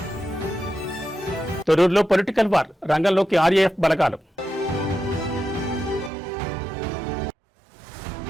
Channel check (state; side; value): drops out; left; at 6.1 s